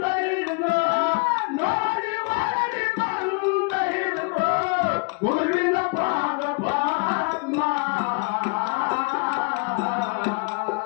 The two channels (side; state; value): right; quieter; 32.4 dB